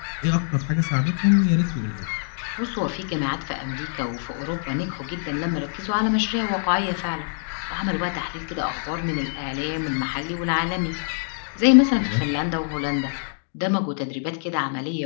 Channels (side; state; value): right; silent; digital silence